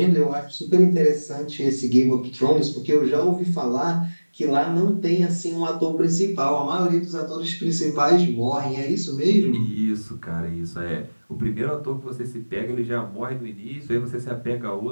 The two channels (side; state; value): both; inverted; correlation -1.00